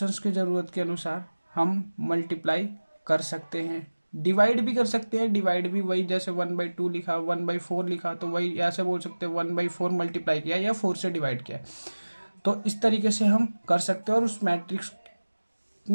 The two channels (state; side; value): inverted; both; correlation -1.00